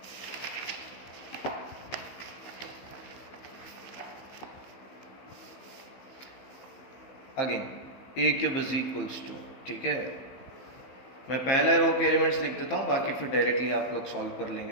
again a cube is equals to, ठीक है, मैं पहले रो के एलिमेंट्स लिख देता हूँ, बाकी फिर डायरेक्टली आप लोग सॉल्व कर लेंगे।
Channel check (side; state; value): right; late; 15 ms